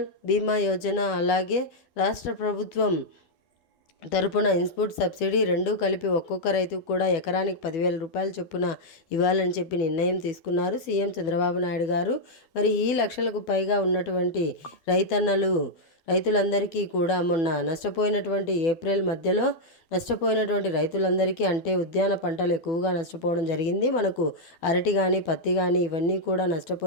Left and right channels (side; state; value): right; late; 12 ms